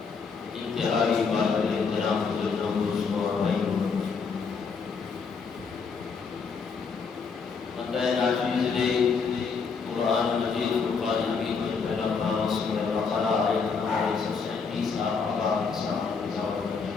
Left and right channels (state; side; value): quieter; right; 5.3 dB